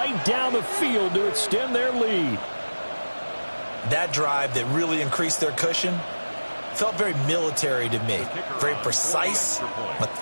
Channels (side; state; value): both; inverted; correlation -1.00